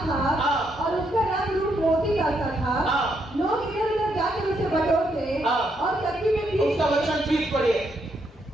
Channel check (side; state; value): both; normal; correlation 0.77